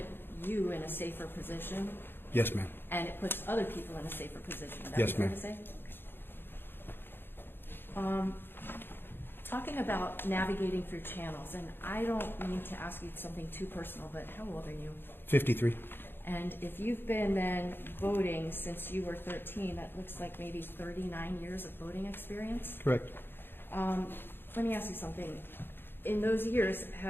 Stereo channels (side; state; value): right; late; 0.10 ms